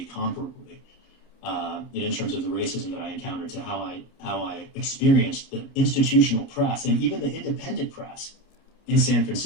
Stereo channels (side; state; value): right; late; 29 ms